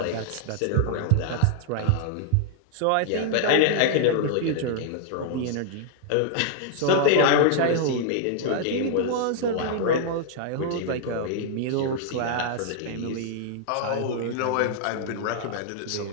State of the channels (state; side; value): different; both; correlation -0.01